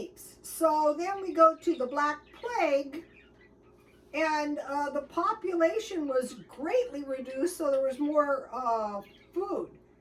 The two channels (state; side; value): identical; both; correlation 1.00